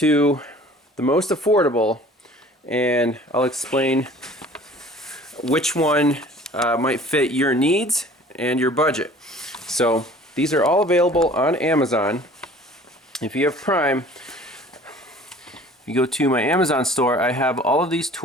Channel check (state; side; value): normal; both; correlation 0.48